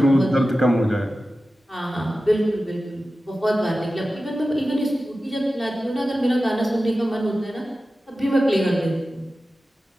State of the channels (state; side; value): normal; both; correlation 0.94